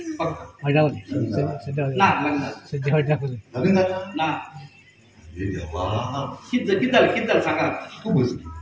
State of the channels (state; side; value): identical; both; correlation 1.00